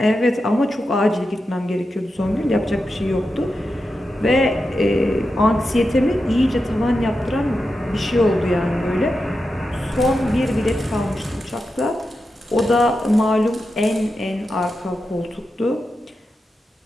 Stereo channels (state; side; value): normal; both; correlation 0.89